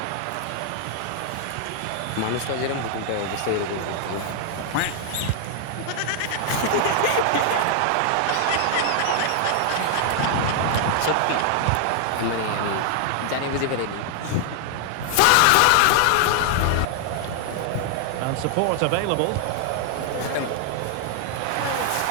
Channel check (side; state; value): both; different; correlation 0.00